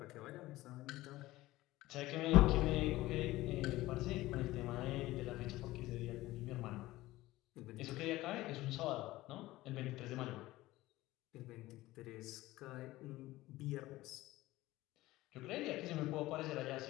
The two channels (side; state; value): right; quieter; 17.6 dB